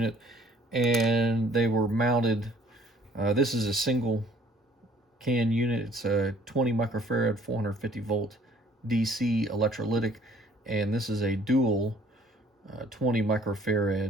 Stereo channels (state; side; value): normal; both; correlation 0.57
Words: and they were mounted. This is a single can unit. It's a 20 microfarad 450 volt DC electrolytic, and this is a dual 20